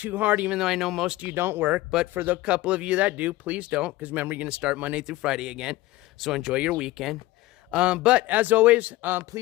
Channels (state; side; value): quieter; right; 17.9 dB